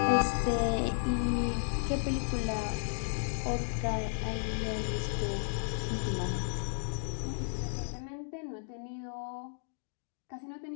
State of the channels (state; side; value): silent; right; digital silence